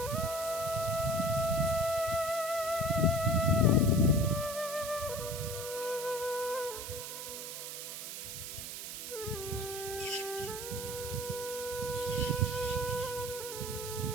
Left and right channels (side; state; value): right; noise; hiss, 7 dB below the sound